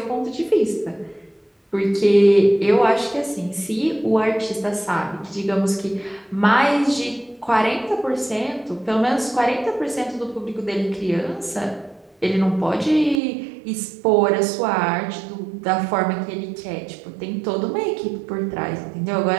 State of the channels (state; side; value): drops out; left; at 13.2 s